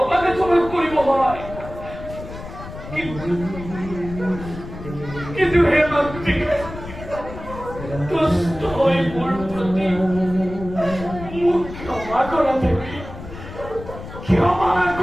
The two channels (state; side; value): noise; left; rumble, 12 dB below the sound